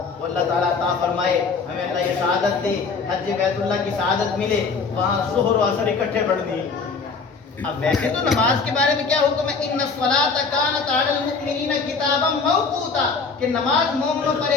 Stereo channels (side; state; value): right; quieter; 4.8 dB